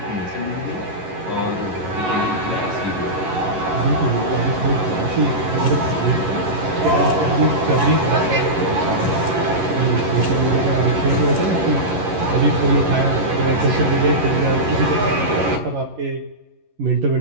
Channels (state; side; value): late; left; 11 ms